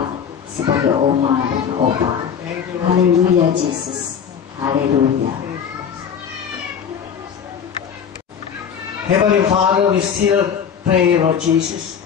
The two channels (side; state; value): right; quieter; 7.6 dB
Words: sebagai oma dan opa. Haleluya Jesus, haleluya. Heavenly Father, we still pray, Lord Jesus.